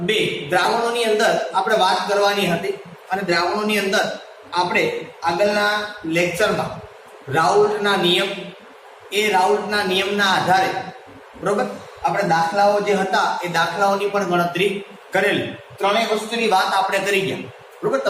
2 દ્રાવણોની અંદર આપણે વાત કરવાની હતી અને દ્રાવણોની અંદર આપણે આગળના લેક્ચરમાં રાઉલ્ટના નિયમ, એ રાઉલ્ટના નિયમના આધારે બરોબર આપણે દાખલાઓ જે હતા એ દાખલાઓની પણ ગણતરી કરેલી. ત્રણેય વસ્તુની વાત આપણે કરી ગયા બરોબર.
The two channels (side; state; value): both; identical; correlation 1.00